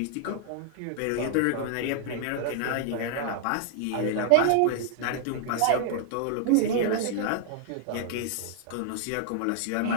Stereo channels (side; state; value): both; different; correlation -0.01